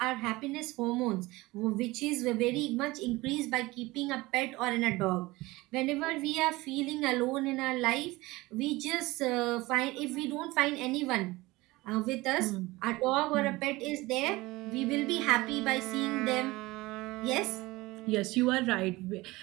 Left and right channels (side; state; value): left; quieter; 20.7 dB